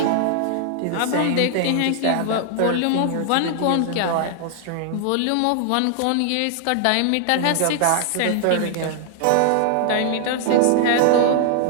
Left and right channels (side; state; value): both; different; correlation -0.01